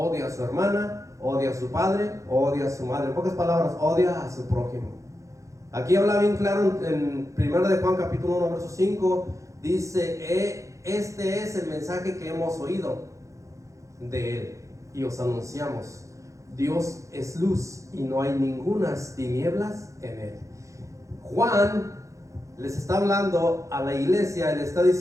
a su hermana, odia a su padre, odia a su madre. En pocas palabras, odia a su prójimo. Aquí habla bien claro en 1 de Juan capítulo 1 verso 5, dice, este es el mensaje que hemos oído de Él y os anunciamos. Dios es luz y no hay ningunas tinieblas en Él. Juan les está hablando a la iglesia y le está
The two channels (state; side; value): late; left; 0.15 ms